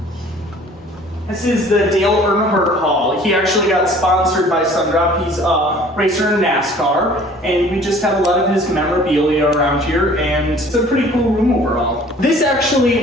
This is the Dale Earnhardt Hall. He actually got sponsored by Sundrop. He's a racer in NASCAR, and we just have a lot of his memorabilia around here, and it's a pretty cool room overall. This actually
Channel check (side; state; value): both; normal; correlation 0.51